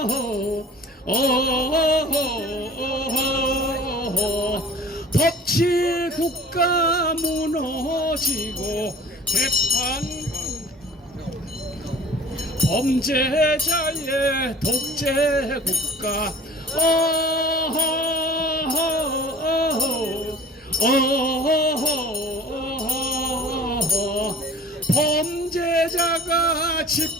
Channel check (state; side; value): normal; both; correlation 0.46